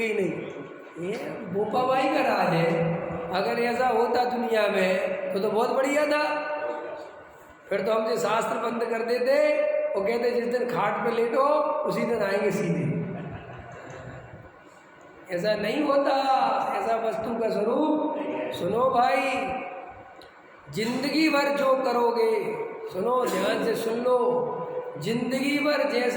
ही नहीं। ये बोपाबाई का राज है। अगर ऐसा होता दुनिया में तो बहुत बढ़िया था, फिर तो हमसे शास्त्र बंद कर देते और कहते जिस दिन खाट पे लेटो उसी दिन आएंगे सीधे। ऐसा नहीं होता, ऐसा वस्तु का स्वरूप। सुनो भाई, जिंदगी भर जो करोगे, सुनो ध्यान से सुन लो, जिंदगी भर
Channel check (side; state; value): both; identical; correlation 1.00